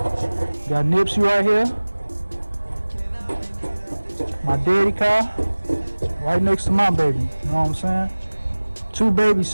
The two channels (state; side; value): inverted; both; correlation -1.00